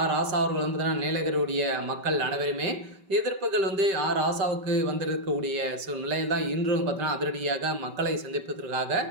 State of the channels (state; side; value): late; left; 5.2 ms